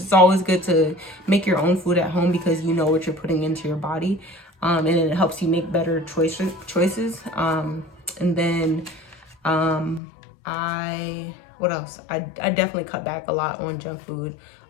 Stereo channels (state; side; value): drops out; right; at 10.0 s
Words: always good to make your own food at home, because you know what you're putting into your body. And it helps you make better choices. And then what else? I definitely cut back a lot on junk food.